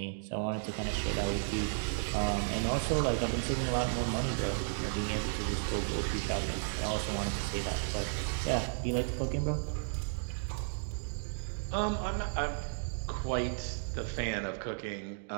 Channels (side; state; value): left; silent; digital silence